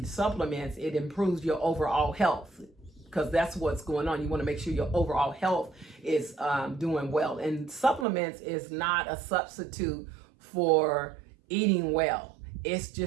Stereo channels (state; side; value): drops out; left; at 8.1 s